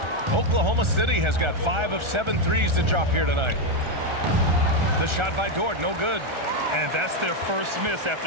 Oklahoma City has got 5 of 7 threes to drop here tonight. The shot by Dort, no good. And that's their first miss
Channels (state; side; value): late; left; 1.4 ms